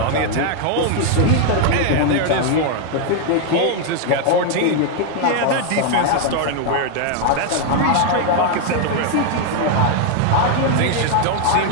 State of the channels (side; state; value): both; different; correlation 0.01